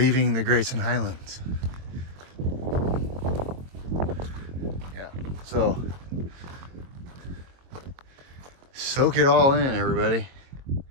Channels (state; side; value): late; left; 22 ms